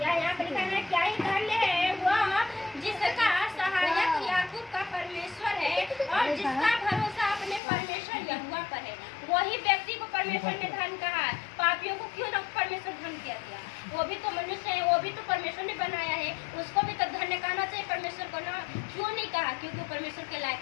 यहाँ पर लिखा है क्या ही धन्य है वह जिसका सहायक याकूब का परमेश्वर है और जिसका भरोसा अपने परमेश्वर यहोवा पर है। वही व्यक्ति को परमेश्वर ने धन कहा है। पापियों को क्यों ना परमेश्वर धन किया दिया, वो भी तो मनुष्य है, वो भी तो परमेश्वर ने बनाया है, उसको भी तो धन्य कहना चाहिए परमेश्वर को ना। क्यों नहीं कहा? क्योंकि परमेश्वर के लायक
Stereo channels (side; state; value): right; drops out; at 7.6 s